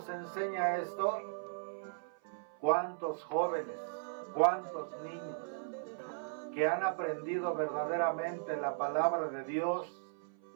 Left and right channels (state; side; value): silent; left; 53 dB below the other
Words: enseña esto, ¿cuántos jóvenes, cuántos niños que han aprendido verdaderamente la palabra de Dios